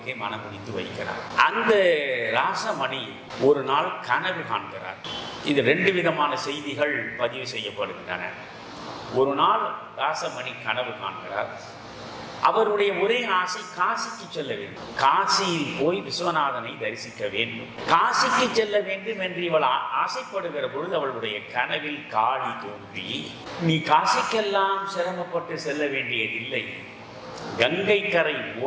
மனமுடித்து வைக்கிறார். அந்த ராசமணி ஒரு நாள் கனவு காண்கிறார். இது 2 விதமான செய்திகள் பதிவு செய்யப்படுகின்றன. ஒரு நாள் ராசமணி கனவு காண்கிறார். அவருடைய ஒரே ஆசை காசிக்கு செல்ல வேண்டும். காசியில் போய் விஸ்வநாதனை தரிசிக்க வேண்டும். காசிக்கு செல்ல வேண்டும் என்று இவள் ஆசைப்படுகிற பொழுது அவளுடைய கனவில் காளி தோன்றி, நீ காசிக்கெல்லாம் சிரமப்பட்டு செல்ல வேண்டியதில்லை, கங்கை கரை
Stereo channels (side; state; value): both; identical; correlation 1.00